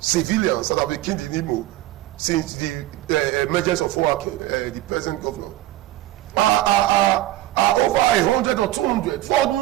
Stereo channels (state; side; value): quieter; left; 15.5 dB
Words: that have been killed in Imo since the emergence of Owake, the present governor, are over 100 or 200 for